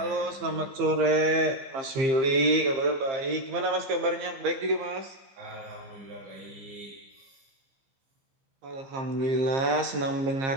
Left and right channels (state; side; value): late; left; 15 ms